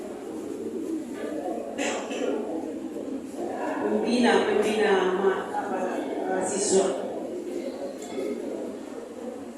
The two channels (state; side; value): identical; both; correlation 1.00